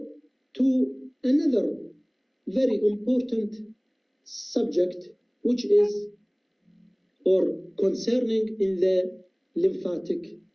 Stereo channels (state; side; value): identical; both; correlation 1.00